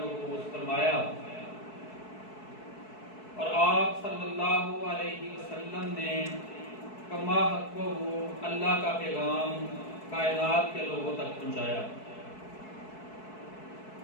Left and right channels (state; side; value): late; right; 4.6 ms